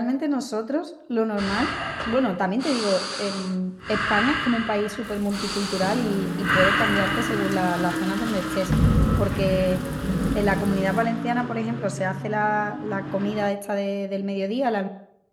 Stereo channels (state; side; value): identical; both; correlation 1.00